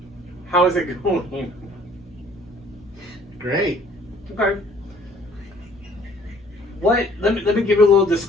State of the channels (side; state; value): both; normal; correlation 0.57